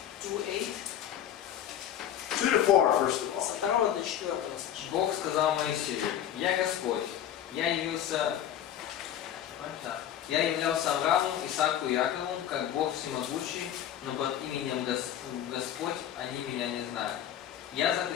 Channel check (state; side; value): quieter; right; 10.6 dB